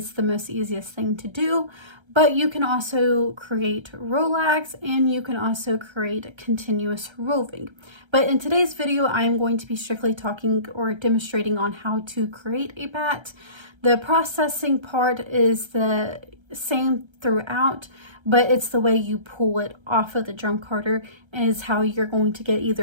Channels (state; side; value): late; left; 1.3 ms